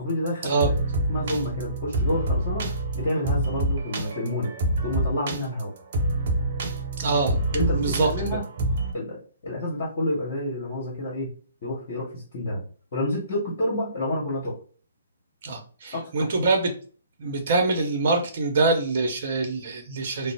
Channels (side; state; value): both; inverted; correlation -0.55